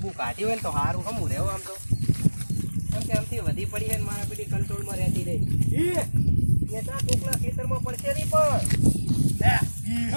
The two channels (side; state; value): both; inverted; correlation -1.00